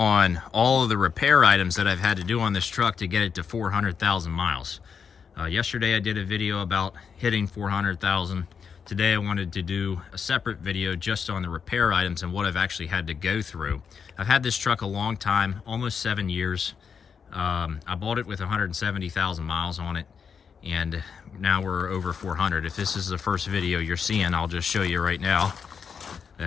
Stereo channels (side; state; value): right; quieter; 6.5 dB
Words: all of the repair items that I've had to do on this truck to get it to 400,000 miles. Yesterday I did a video about hitting 400,000. Today I wanted to do a separate video just on the repair items and what I've actually had to go through. I've had this truck a long time, almost 7 years. I bought it with 170,000 miles on it, and now we're over 400. If this is the first video you're seeing, I'll just show you right now